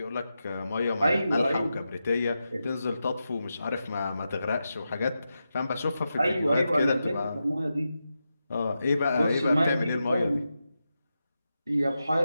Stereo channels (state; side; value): inverted; both; correlation -0.89